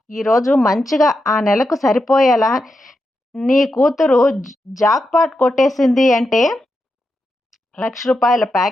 ఈరోజు మంచిగా ఆ నెలకు సరిపోయేలా నీ కూతురు జాక్‌పాట్ కొట్టేసింది అంటే రూ. 1,00,000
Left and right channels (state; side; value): normal; both; correlation 0.87